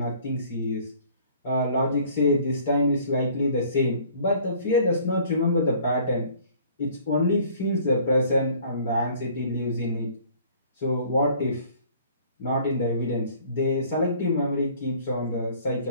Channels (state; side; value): inverted; both; correlation -0.54